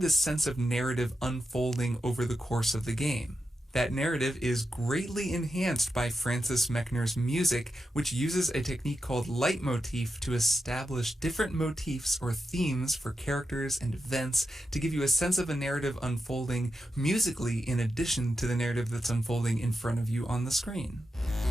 this sense of narrative unfolding over the course of the game. That narrative is greatly enhanced by Francis Mechner's music, which uses a technique called leitmotif to establish different motifs or themes for characters and events to give you a sense of a narrative unfolding musically in addition to the narrative that's unfolding in front of you on the screen.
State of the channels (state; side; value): normal; both; correlation 0.88